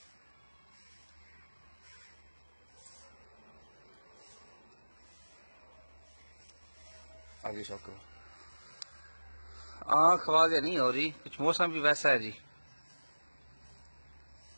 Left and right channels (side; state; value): both; inverted; correlation -1.00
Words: आगे शौक करो। आँख आवाज नहीं हो रही, कुछ मौसम भी वैसा है जी।